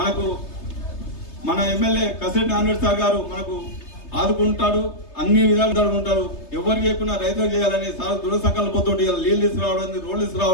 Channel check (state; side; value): late; right; 3.3 ms